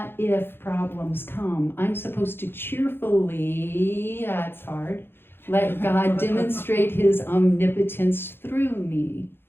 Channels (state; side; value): late; right; 0.10 ms